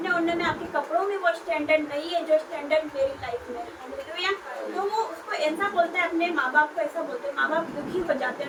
ओढ़ने में, आपके कपड़ों में वो स्टैंडर्ड नहीं है जो स्टैंडर्ड मेरी लाइफ में है। तो वो उसको ऐसा बोलता है, अपने माँ बाप को ऐसा बोलते हैं। माँ बाप दुखी हो जाते हैं,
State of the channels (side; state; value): both; identical; correlation 1.00